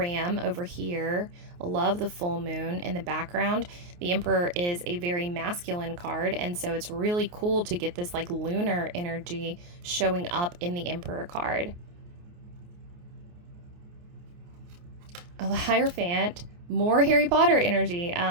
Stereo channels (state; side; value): late; left; 28 ms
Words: over here. I love the full moon in the background. The Emperor is a very masculine card, and so it's really cool to get this like lunar energy showing up in the Emperor card. Oh, the Hierophant, more Harry Potter energy.